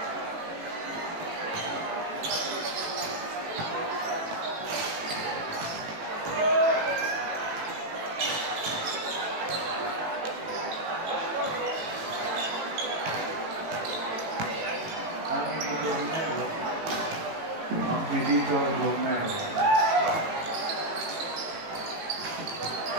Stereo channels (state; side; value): late; left; 18 ms